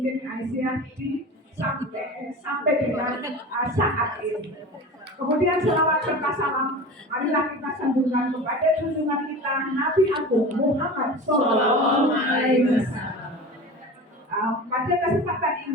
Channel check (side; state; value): both; normal; correlation 0.34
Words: Aisyah sampai dengan saat ini. Kemudian selawat serta salam marilah kita sambungkan kepada junjungan kita Nabi Agung Muhammad Sallallahu Alaihi Wasallam. Pada kesempatan